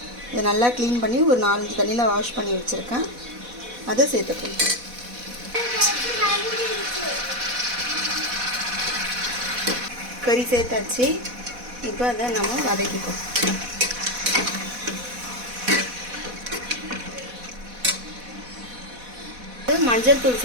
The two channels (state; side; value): late; left; 4.1 ms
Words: இதை நல்லா க்ளீன் பண்ணி ஒரு 4-5 தண்ணியில் வாஷ் பண்ணி வச்சுருக்கேன். அதை சேர்த்துக்கணும். கறி சேர்த்தாச்சு. இப்போ அதை நம்ம வதக்கிப்போம். மஞ்சள் தூள்